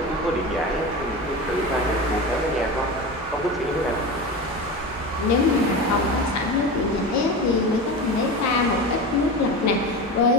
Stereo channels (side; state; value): both; normal; correlation 0.26